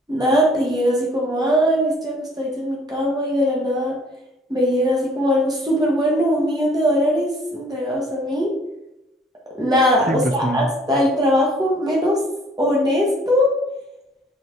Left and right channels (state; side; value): normal; both; correlation 0.57